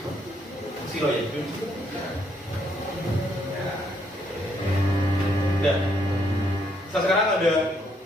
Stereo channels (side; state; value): both; normal; correlation 0.72